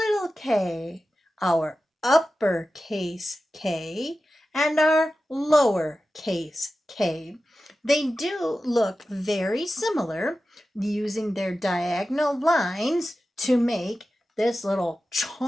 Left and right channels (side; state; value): both; normal; correlation 0.93